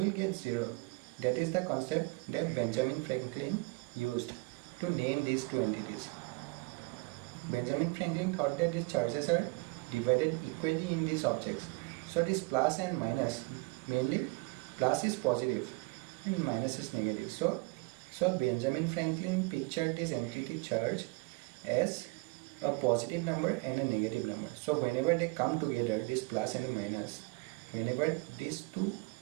get 0. That is the concept that Benjamin Franklin used to name these two entities. Benjamin Franklin thought that these charges are divided equally in these objects. So this plus and minus, mainly plus is positive and minus is negative. So Benjamin Franklin pictured this entity charge as a positive number and a negative number. So whenever they come together, this plus and a minus, whenever these two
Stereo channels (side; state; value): left; quieter; 26.8 dB